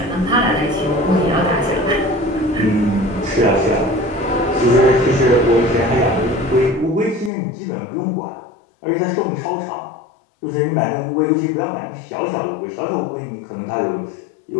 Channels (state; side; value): drops out; right; at 7.3 s